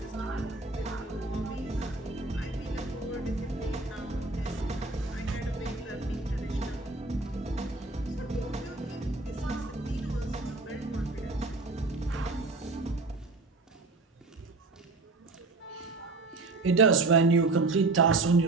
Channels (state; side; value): quieter; left; 3.5 dB